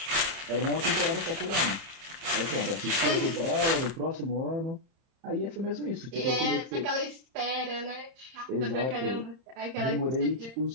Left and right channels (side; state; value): left; late; 31 ms